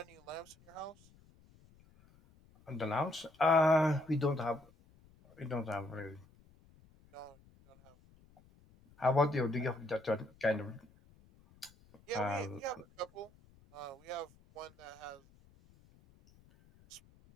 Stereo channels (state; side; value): noise; left; rumble, 27 dB below the sound